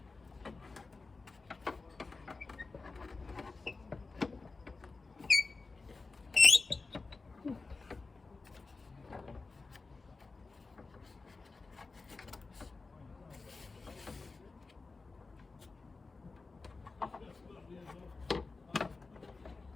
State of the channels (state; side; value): quieter; right; 3.9 dB